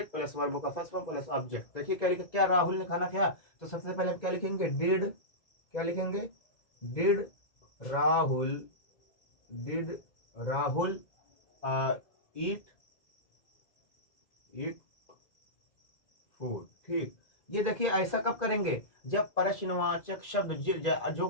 plus verb का फर्स्ट फॉर्म प्लस ऑब्जेक्ट। देखिए क्या लिखा, क्या राहुल ने खाना खाया, तो सबसे पहले आप क्या लिखेंगे, डिड, क्या लिखेंगे, did Rahul, did Rahul eat food. ठीक, ये देखिए ऐसा कब करेंगे, जब प्रश्नवाचक शब्द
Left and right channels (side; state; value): right; late; 2.0 ms